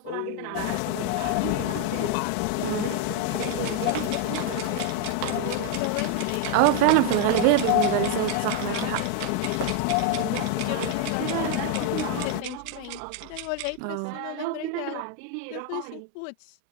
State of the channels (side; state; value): both; different; correlation 0.01